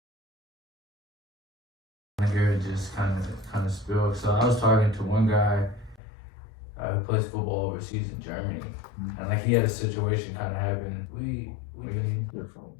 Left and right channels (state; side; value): drops out; right; at 6.0 s